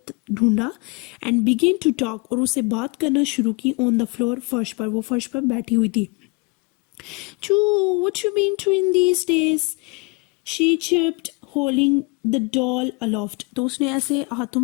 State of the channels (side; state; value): right; quieter; 29.2 dB